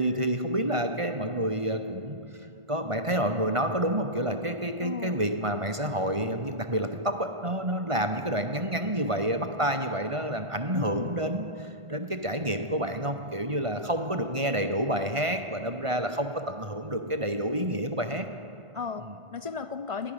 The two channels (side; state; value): left; late; 1.5 ms